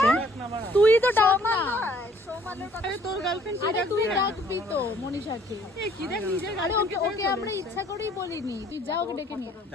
তুই তো ডাক না, আরে তোর গার্লফ্রেন্ড আরে তুই ডাকবি তো মনীষাকে। এই কি দেখ নিজের আরে ওকে আমরা ইচ্ছা করেই বলিনি, তুই যা ওকে ডেকে নিয়ে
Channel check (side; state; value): both; normal; correlation 0.59